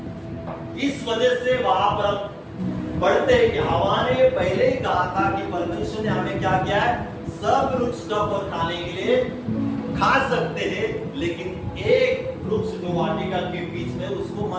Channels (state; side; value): identical; both; correlation 1.00